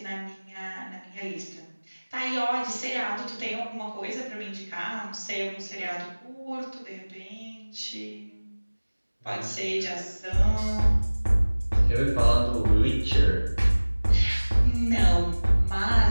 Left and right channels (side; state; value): both; inverted; correlation -1.00